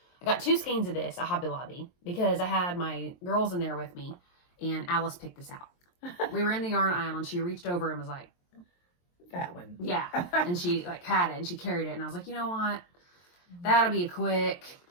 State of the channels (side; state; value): right; late; 23 ms